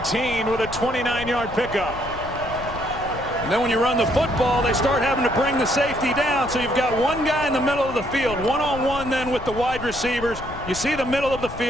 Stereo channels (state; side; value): noise; left; rumble, 13 dB below the sound